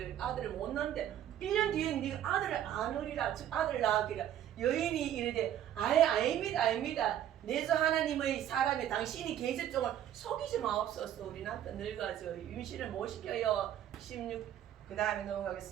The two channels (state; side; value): quieter; left; 11.0 dB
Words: 아들을 못 낳는데 1년 뒤에 네가 아들을 안으리라, 즉 아들을 낳으리라. 여인이 이르되 아닙니다. 내주 하나님의 사람이 당신이 계집종을 속이지 마옵소서. 우리 남편 늙어가지고 임신을 못 시켜요. 16 그 다음에